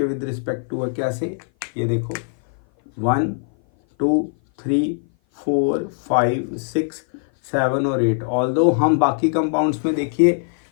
विद रिस्पेक्ट टू है। कैसे, ये देखो 1 2 3 4 5 6 7 और 8। ऑल्दो हम बाकी कंपाउंड्स में देखिए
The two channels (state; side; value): silent; right; 57 dB below the other